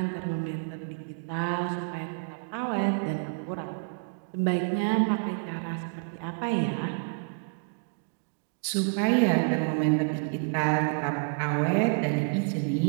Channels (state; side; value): quieter; left; 38.6 dB